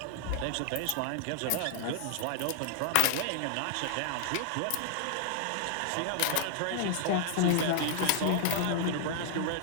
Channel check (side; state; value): both; different; correlation 0.00